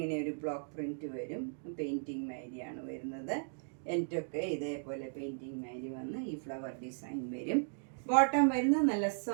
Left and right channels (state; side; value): silent; left; digital silence